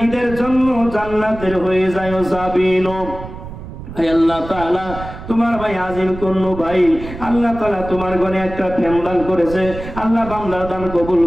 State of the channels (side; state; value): right; noise; rumble, 12 dB below the sound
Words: জন্য জান্নাতের হয়ে যায় সাবিনো। আল্লাহ তাআলা তোমার ভাই আজিম কন্নু ভাই, আল্লাহ তাআলা তোমার ঘরে একটা ফ্যান দান করেছে, আল্লাহ বান্দার দান কবুল